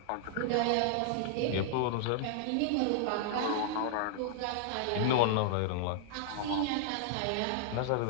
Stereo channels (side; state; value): both; different; correlation -0.01